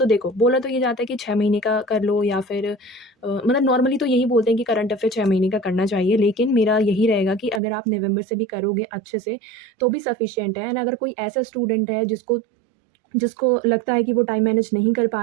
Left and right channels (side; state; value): left; drops out; at 7.6 s